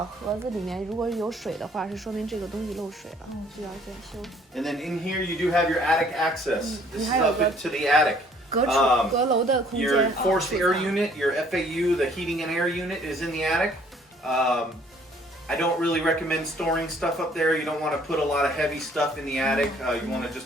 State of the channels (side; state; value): both; normal; correlation 0.60